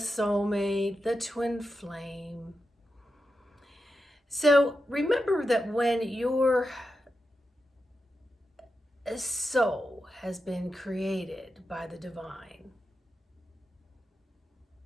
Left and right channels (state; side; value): normal; both; correlation 0.89